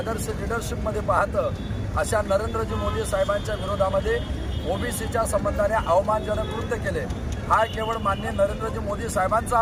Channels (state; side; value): identical; both; correlation 1.00